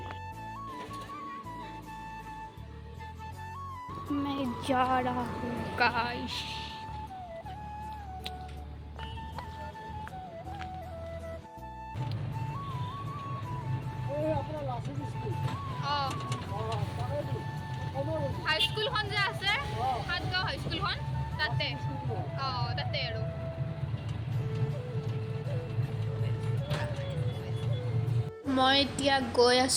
मैं जा रहा हूँ गाइस। হাই স্কুলখন যে আছে সাতগাঁও হাই স্কুলখন তাতে তাতে আৰু মই এতিয়া গৈ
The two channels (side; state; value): both; identical; correlation 1.00